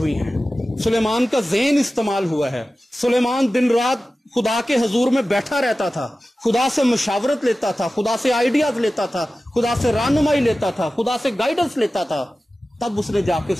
ہیں, سلیمان کا ذہن استعمال ہوا ہے. سلیمان دن رات خدا کے حضور میں بیٹھا رہتا تھا, خدا سے مشاورت لیتا تھا, خدا سے آئیڈیاز لیتا تھا, خدا سے رہنمائی لیتا تھا, خدا سے گائیڈنس لیتا تھا. تب اس نے جا کے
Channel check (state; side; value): normal; both; correlation 0.95